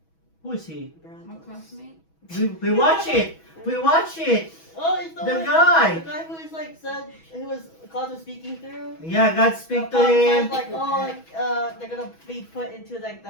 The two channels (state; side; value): late; right; 6.2 ms